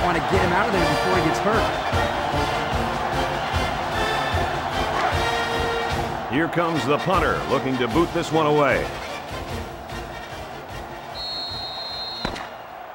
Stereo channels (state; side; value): identical; both; correlation 1.00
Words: want to get him out of there before he gets hurt. Here comes the punter, looking to boot this one away.